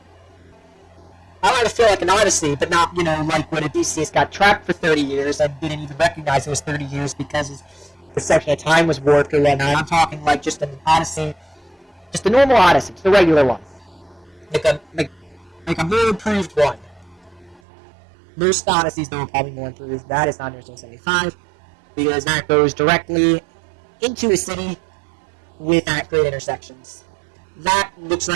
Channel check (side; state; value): left; drops out; at 17.6 s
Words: I want it to feel like an odyssey, but not, like when Odysseus got trapped for 30 years and didn't even recognize it was 30 years because his perception of time was warped or whatnot. I'm talking like just an odyssey, just a normal odyssey, just a regular one. Like a more improved one. Most odysseys, though, are probably more improved. That is not Interstate 75, because that goes directly into a city with great intersections. That looks